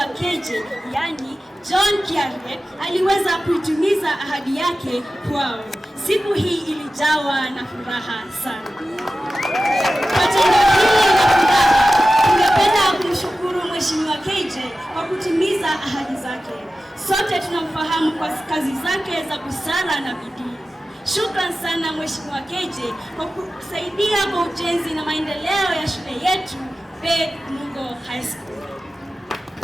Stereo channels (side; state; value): both; normal; correlation 0.94